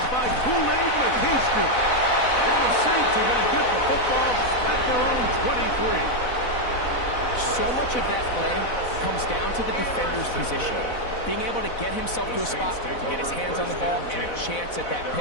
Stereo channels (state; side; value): late; right; 4.0 ms